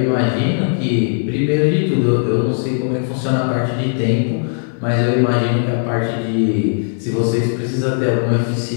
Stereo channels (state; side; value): silent; right; digital silence